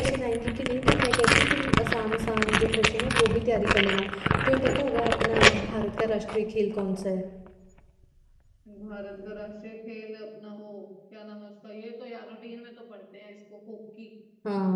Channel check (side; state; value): both; identical; correlation 1.00